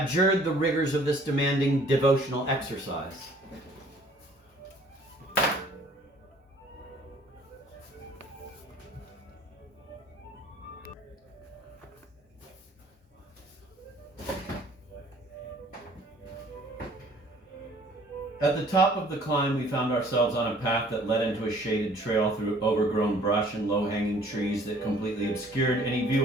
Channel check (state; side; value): normal; both; correlation 0.55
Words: the rigors of this demanding devotional exercise. At the top of the climb, we found ourselves on a path that led into a shaded trail through overgrown brush and low-hanging trees that completely obscured any